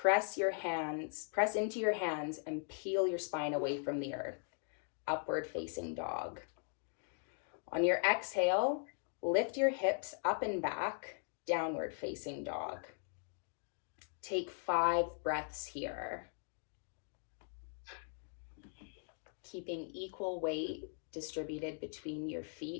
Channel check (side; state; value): right; silent; 51 dB below the other